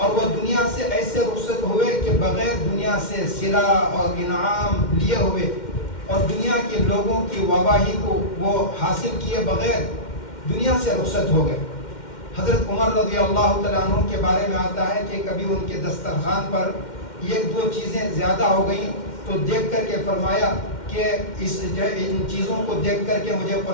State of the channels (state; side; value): late; right; 2.1 ms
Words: وہ دنیا سے ایسے رخصت ہوئے کہ بغیر دنیا سے صلہ اور انعام لیے ہوئے اور دنیا کے لوگوں کی واہواہی کو وہ حاصل کیے بغیر دنیا سے رخصت ہو گئے۔ حضرت عمر رضی اللہ تعالیٰ عنہ کے بارے میں آتا ہے کہ کبھی ان کے دسترخوان پر ایک دو چیزیں زیادہ ہو گئیں تو دیکھ کر کے فرمایا کہ ان چیزوں کو دیکھ کر کے مجھے